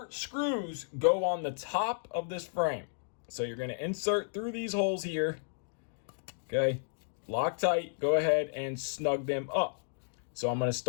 screws go on the top of this frame. So you're gonna insert through these holes here, okay? Loctite, go ahead and snug them up. So I'm gonna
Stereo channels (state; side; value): silent; right; digital silence